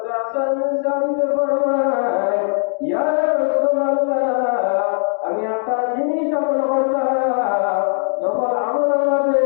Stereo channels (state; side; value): silent; right; digital silence